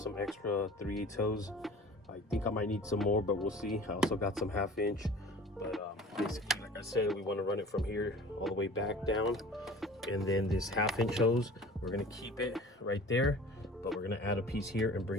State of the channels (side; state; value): both; normal; correlation 0.43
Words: extra 3/8 hose. I think I might need some more, but we'll see. I also got some 1/2 inch, but basically, like I said, we want to run it from here all the way back down. And then this 1/2 inch hose, we're gonna keep it right there, but we're gonna add a piece here and